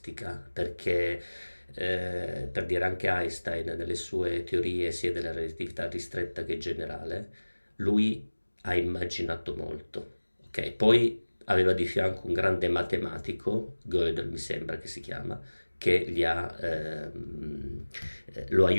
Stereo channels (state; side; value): inverted; both; correlation -1.00